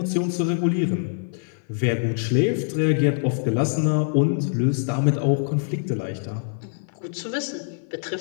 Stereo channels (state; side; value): silent; right; 56 dB below the other